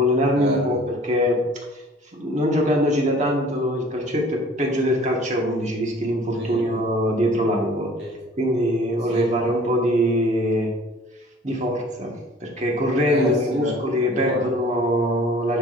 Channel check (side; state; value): both; normal; correlation 0.50